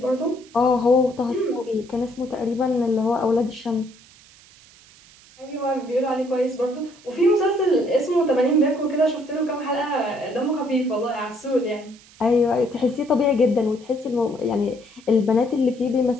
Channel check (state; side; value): noise; right; hiss, 25 dB below the sound